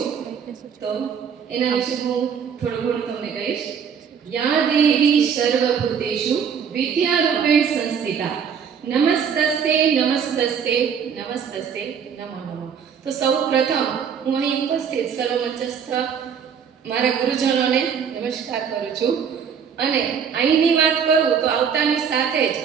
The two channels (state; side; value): quieter; left; 7.2 dB